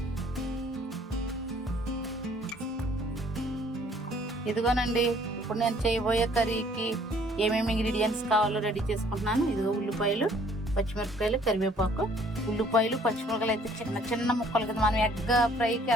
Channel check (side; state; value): both; normal; correlation 0.59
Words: ఇదిగోనండి ఇప్పుడు నేను చేయబోయే కర్రీకి ఏమేమి ఇంగ్రీడియంట్స్ కావాలో రెడీ చేసుకుంటున్నాను. ఇదిగో ఉల్లిపాయలు, పచ్చిమిరపకాయలు, కరివేపాకు. ఉల్లిపాయలు పచ్చిమిరపకాయలు అయితే చిన్న చిన్న ముక్కలు కదా, మనం ఎగ్ ఫ్రైకి